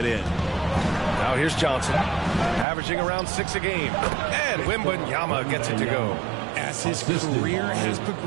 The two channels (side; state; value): left; drops out; at 2.7 s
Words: end. Now here's Johnson, averaging around 6 a game. And Wembanyama gets it to go. As his career has